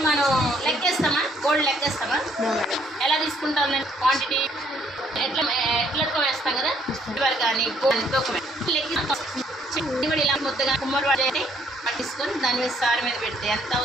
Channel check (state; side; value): normal; both; correlation 0.66